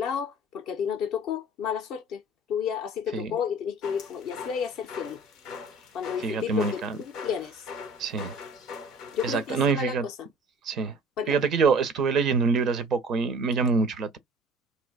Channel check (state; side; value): normal; both; correlation 0.46